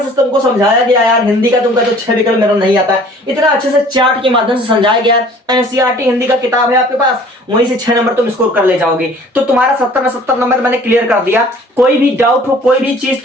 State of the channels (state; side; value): normal; both; correlation 0.51